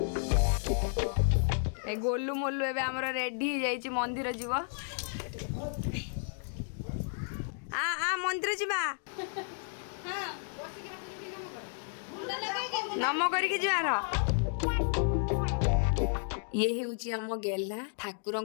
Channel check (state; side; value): silent; right; digital silence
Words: ए गोलू मोलू एबे हमर रेडी हो जाइछि मंदिर जीव आ मंदिर जीवा नम करके जीवार ये हूँ आम गेला